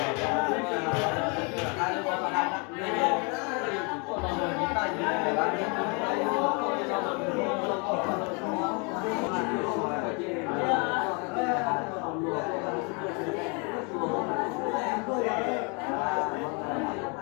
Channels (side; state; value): right; quieter; 33.5 dB